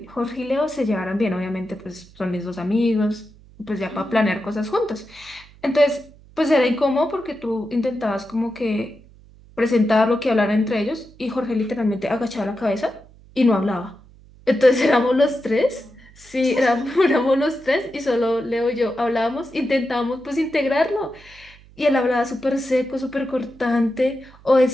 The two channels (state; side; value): noise; right; hum, 24 dB below the sound